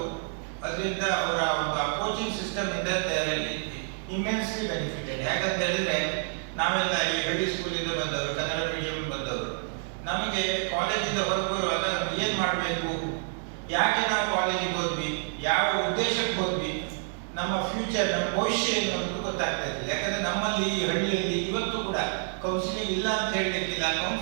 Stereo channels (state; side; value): silent; left; 59 dB below the other